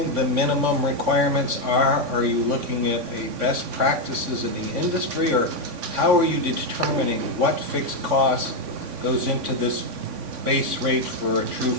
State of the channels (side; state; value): left; late; 3.5 ms